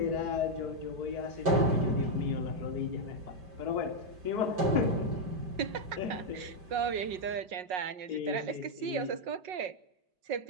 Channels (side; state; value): left; late; 5.5 ms